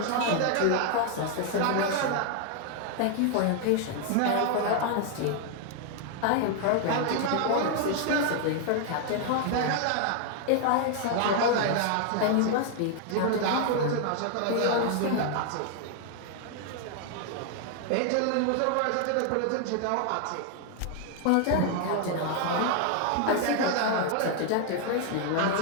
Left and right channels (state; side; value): different; both; correlation 0.00